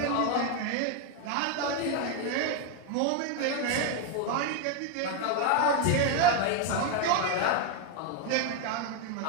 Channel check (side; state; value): both; different; correlation 0.01